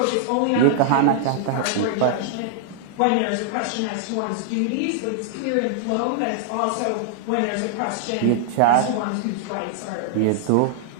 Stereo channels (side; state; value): both; different; correlation -0.01